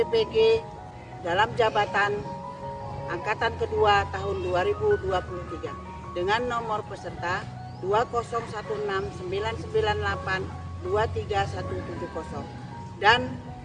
dalam jabatan angkatan kedua tahun 2023 dengan nomor peserta 2016998-23170 dan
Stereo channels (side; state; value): both; identical; correlation 1.00